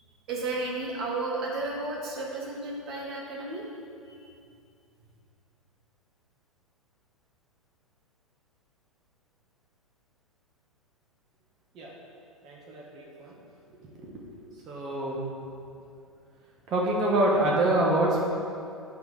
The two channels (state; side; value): normal; both; correlation 0.33